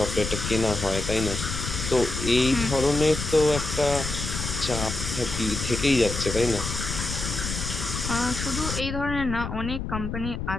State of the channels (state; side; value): noise; left; rumble, 5 dB below the sound